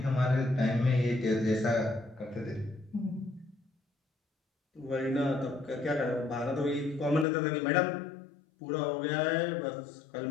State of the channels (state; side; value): drops out; right; at 7.2 s